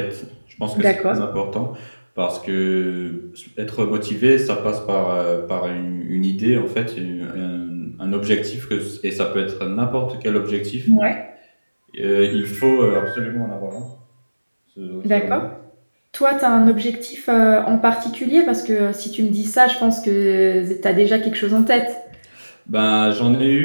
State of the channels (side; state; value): both; inverted; correlation -1.00